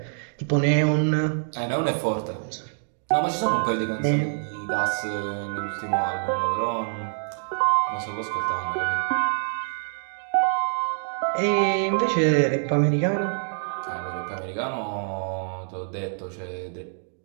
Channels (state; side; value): silent; left; digital silence